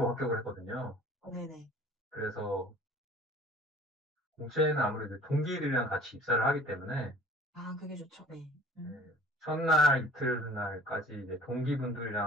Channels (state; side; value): normal; both; correlation 0.49